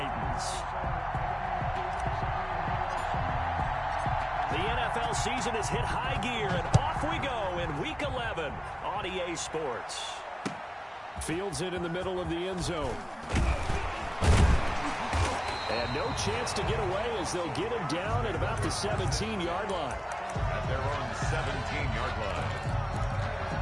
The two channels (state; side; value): identical; both; correlation 1.00